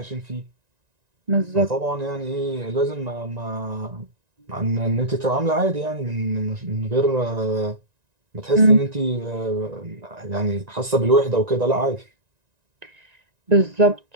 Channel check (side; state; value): left; late; 1.9 ms